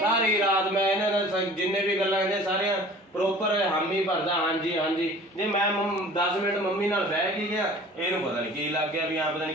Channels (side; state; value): both; normal; correlation 0.45